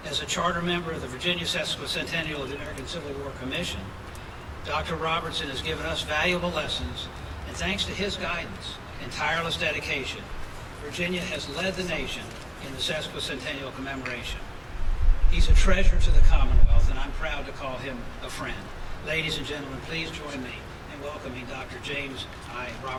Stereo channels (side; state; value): both; identical; correlation 1.00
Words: As a charter member of the Virginia Sesquicentennial of the American Civil War Commission, Dr. Robertson has given us valuable lessons, and thanks to his guidance and tireless dedication, Virginia has led the nation in the Sesquicentennial commemoration. He's a treasure to the Commonwealth, and I'm proud to call him a friend. Ladies and gentlemen, please join me in welcoming Dr. James I.